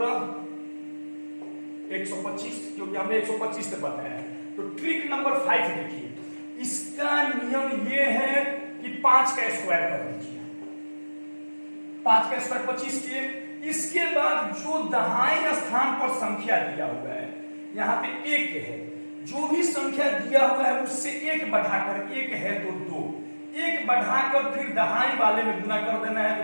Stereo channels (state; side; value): inverted; both; correlation -1.00